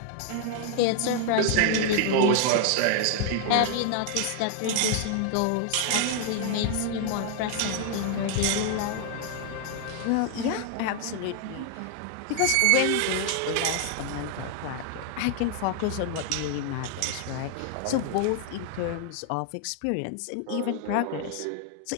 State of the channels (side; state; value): both; different; correlation 0.00